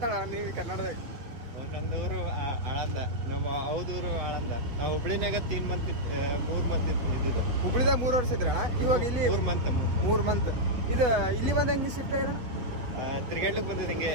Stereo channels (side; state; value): left; late; 7.9 ms